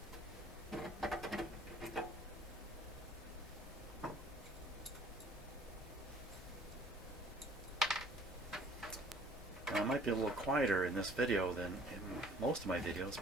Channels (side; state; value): both; normal; correlation 0.55